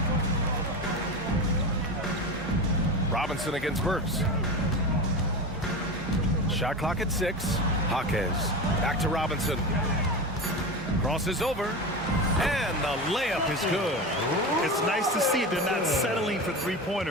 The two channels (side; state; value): both; normal; correlation 0.24